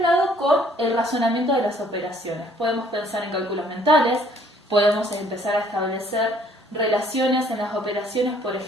con el razonamiento de las operaciones. Podemos pensar en cálculos mentales, podemos empezar a establecer relaciones en las operaciones, por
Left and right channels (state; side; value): normal; both; correlation 0.60